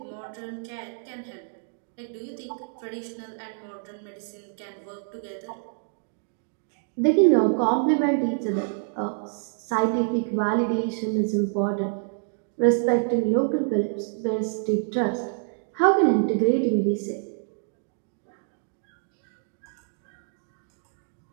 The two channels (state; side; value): silent; left; digital silence